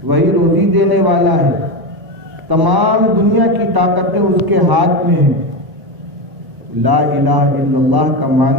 وہی روزی دینے والا ہے، تمام دنیا کی طاقتیں اس کے ہاتھ میں ہیں۔ لا الہ الا اللہ کا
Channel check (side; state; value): left; late; 1.0 ms